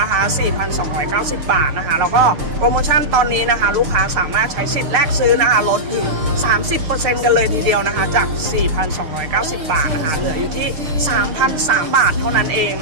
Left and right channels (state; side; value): late; left; 6.9 ms